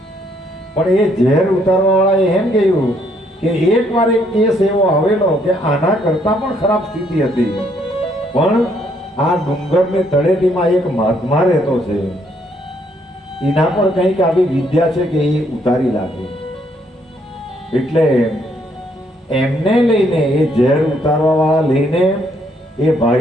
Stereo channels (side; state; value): both; normal; correlation 0.70